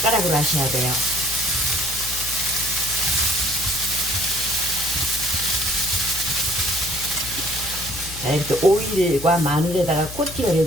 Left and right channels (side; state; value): left; noise; hum, 13 dB below the sound